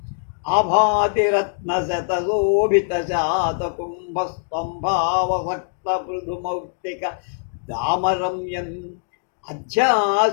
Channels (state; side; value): silent; right; digital silence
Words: ఆభాతిరత్నశతశోభిత శాతకుంభస్తంభావసక్త పృథుమౌక్తిక దామరమ్యం